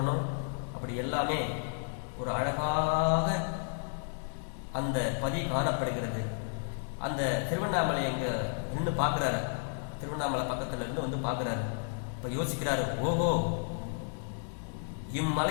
அப்படி எல்லாமே ஒரு அழகாக அந்த பதி காணப்படுகிறது. அந்த திருவண்ணாமலை எங்க நின்று பார்க்கிறாரு, திருவண்ணாமலை பக்கத்துல இருந்து பார்க்கிறாரு. இப்ப யோசிக்கிறாரு, ஓஹோ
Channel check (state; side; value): silent; right; 56 dB below the other